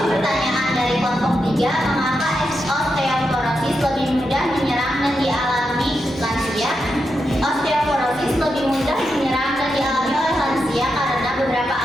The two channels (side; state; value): both; normal; correlation 0.86